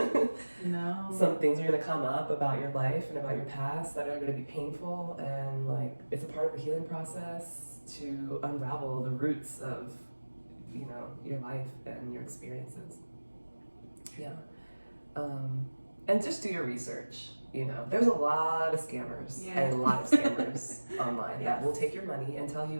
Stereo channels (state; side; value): inverted; both; correlation -1.00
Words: No. Some things are gonna come up about your life and about your past that are gonna be painful, and like, it's a part of the healing process to unravel the roots of, you know, your life and your experiences. And just do your research. You know, there's a lot of scammers and a lot of scammers online that will take your money and tell you